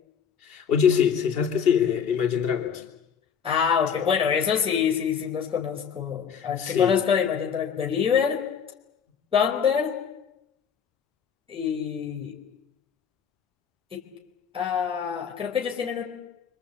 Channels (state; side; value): quieter; right; 7.3 dB